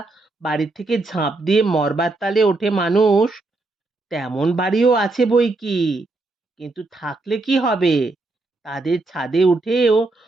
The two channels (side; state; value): left; quieter; 3.2 dB